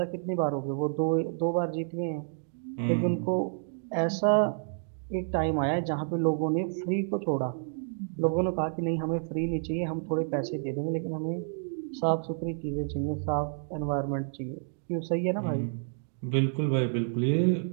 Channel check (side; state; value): left; silent; digital silence